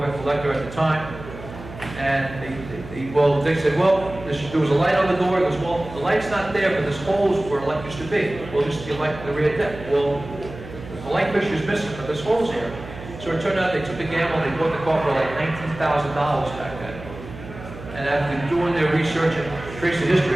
collector at the time. And they said, well, there was a light on the door. He goes, well, the light's not there, but there's holes where light used to be. Well, just the light in the rear deck. Well, the light fixture is missing, but there's holes here. So it turned out they took a gamble and they bought the car for like $19,000 back then. And after doing their research and trace the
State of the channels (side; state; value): right; noise; hum, 14 dB below the sound